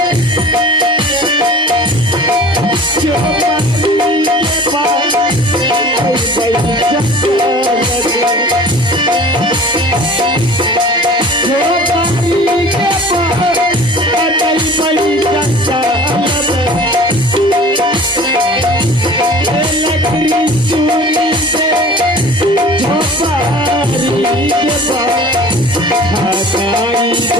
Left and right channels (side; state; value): both; normal; correlation 0.44